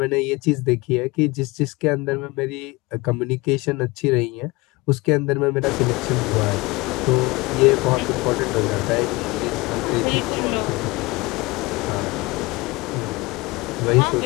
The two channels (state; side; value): quieter; right; 23.5 dB